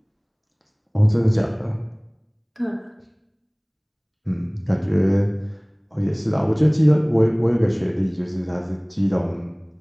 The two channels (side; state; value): both; identical; correlation 1.00